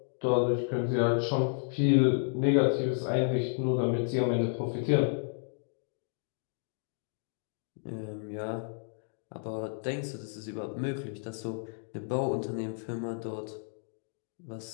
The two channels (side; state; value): right; silent; digital silence